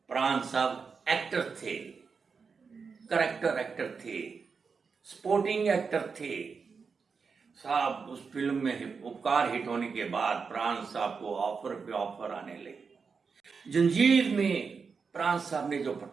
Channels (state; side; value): quieter; left; 5.3 dB